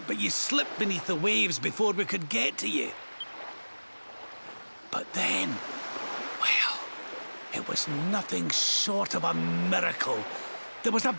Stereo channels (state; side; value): inverted; both; correlation -1.00